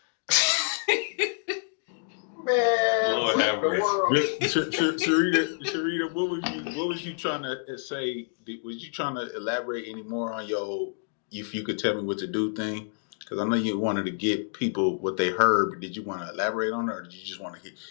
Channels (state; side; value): silent; right; digital silence